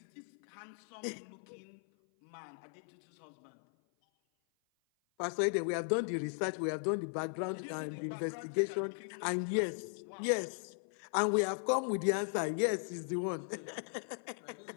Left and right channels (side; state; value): right; silent; 53 dB below the other